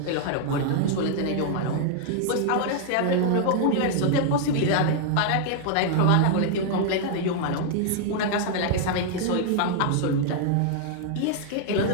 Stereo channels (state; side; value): different; both; correlation 0.00